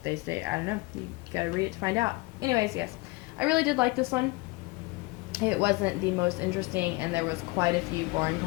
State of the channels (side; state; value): right; quieter; 24.3 dB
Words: they stay. I don't know. You gotta read it to find out. Anyways, yes. I really did like this one. It wasn't the most interesting, and there was quite a few boring